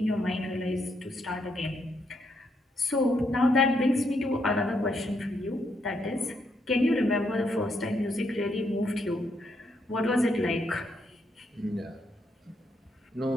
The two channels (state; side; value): normal; both; correlation 0.77